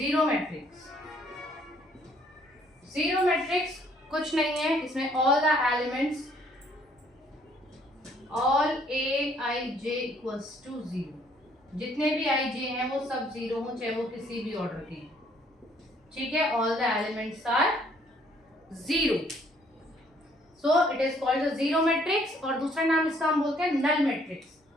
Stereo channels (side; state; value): both; normal; correlation 0.64